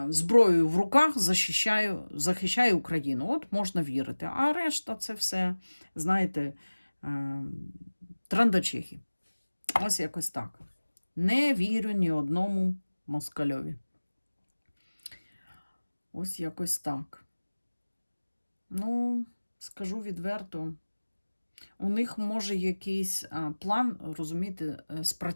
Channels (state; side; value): inverted; both; correlation -1.00